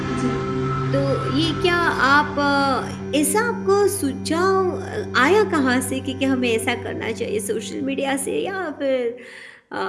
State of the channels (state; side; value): identical; both; correlation 1.00